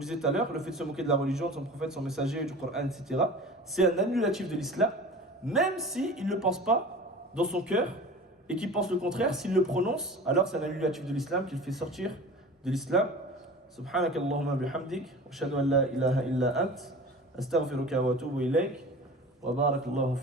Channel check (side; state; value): both; normal; correlation 0.38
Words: tout à l'heure, le fait de se moquer de la religion, de son prophète, son messager, du Coran, etc. c'est un annulatif de l'islam, même s'il ne le pense pas dans son cœur et qu'il pense le contraire, s'il le prononce, alors c'est un annulatif de l'islam qui le fait sortir de l'islam. سبحانك اللهم بحمدك وأشهد أن لا إله إلا أنت أستغفرك وأتوب إليك وبارك الله